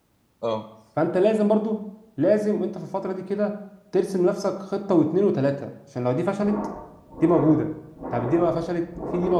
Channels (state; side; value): identical; both; correlation 1.00